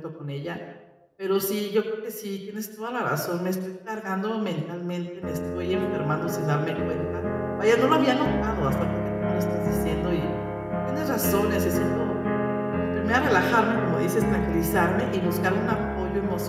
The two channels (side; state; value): both; identical; correlation 1.00